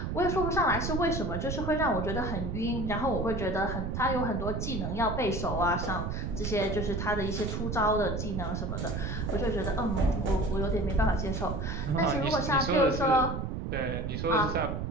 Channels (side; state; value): right; noise; rumble, 3 dB below the sound